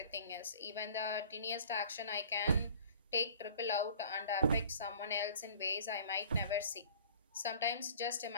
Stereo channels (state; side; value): inverted; both; correlation -0.49